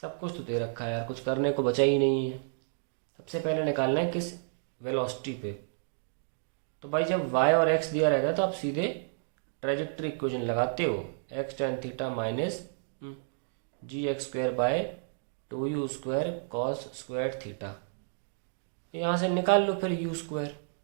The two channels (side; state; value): left; silent; digital silence